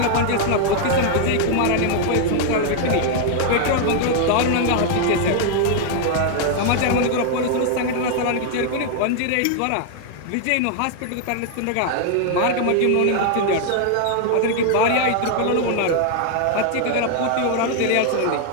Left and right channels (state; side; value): different; both; correlation 0.00